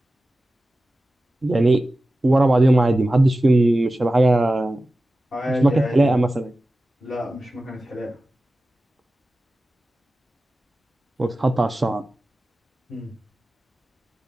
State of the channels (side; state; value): both; normal; correlation 0.95